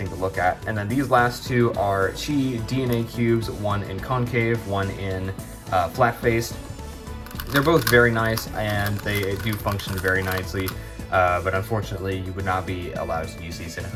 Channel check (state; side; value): identical; both; correlation 1.00